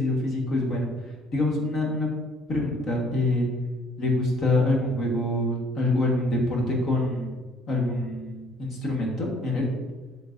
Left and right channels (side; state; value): both; normal; correlation 0.60